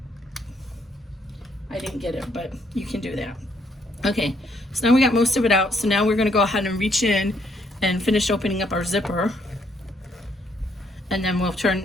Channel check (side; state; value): both; normal; correlation 0.71